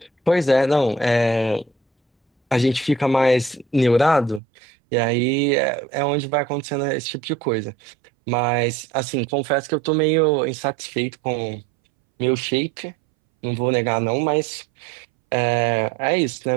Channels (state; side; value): drops out; left; at 4.4 s